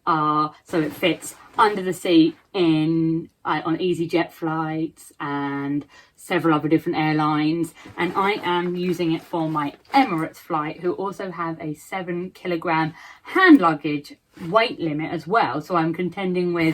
are so it fits under the seat on EasyJet flights and several other different airlines, and I am using it for my Emirates flight, who also have a 7-kilogram hand luggage weight limit as well, so I'm contending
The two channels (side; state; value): both; identical; correlation 1.00